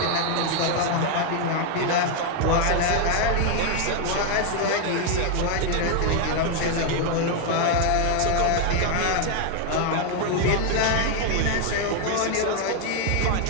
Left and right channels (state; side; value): different; both; correlation 0.01